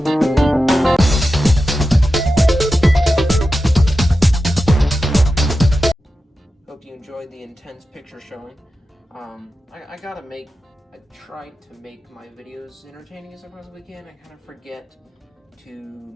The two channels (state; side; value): normal; both; correlation 0.92